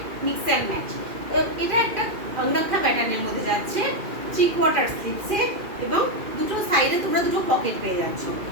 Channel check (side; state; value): left; late; 2.6 ms